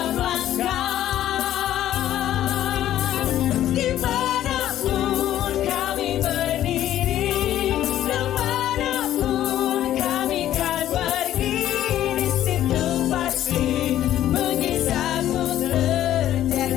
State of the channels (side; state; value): right; quieter; 12.4 dB